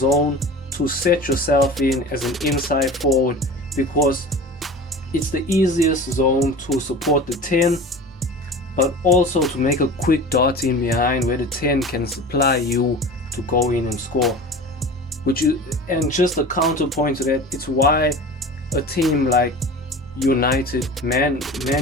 to set yourself in as an inside forward, because it's the easiest zone to support the 10, but also to make a quick dart in behind where the 10 can supply you to go in and score. And just a counterpoint to that, it's why a team like United, Man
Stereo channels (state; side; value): normal; both; correlation 0.36